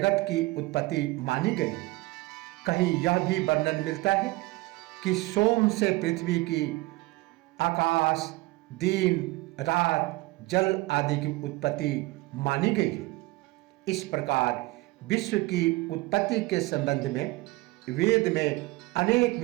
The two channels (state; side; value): quieter; left; 21.0 dB